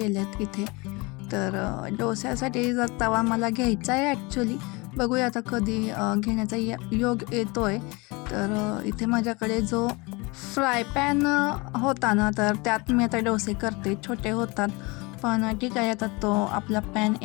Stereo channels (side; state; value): right; quieter; 26.1 dB